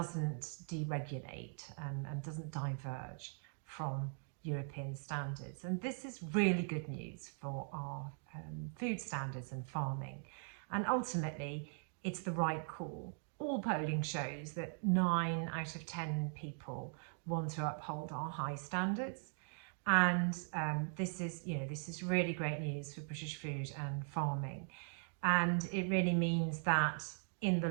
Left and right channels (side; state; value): left; silent; 51 dB below the other